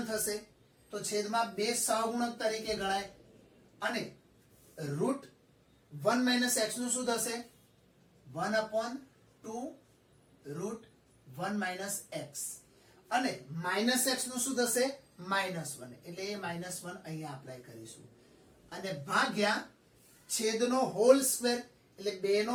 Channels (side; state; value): both; identical; correlation 1.00